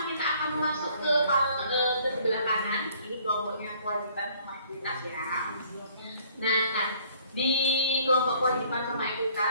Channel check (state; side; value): inverted; both; correlation -0.59